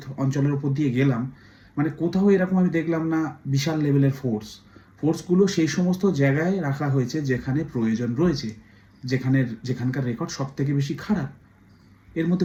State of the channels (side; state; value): both; identical; correlation 1.00